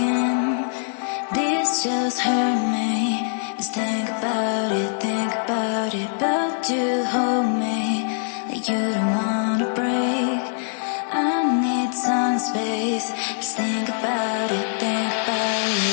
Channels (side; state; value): right; silent; digital silence